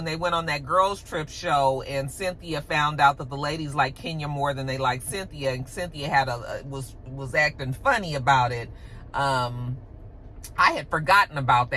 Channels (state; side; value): identical; both; correlation 1.00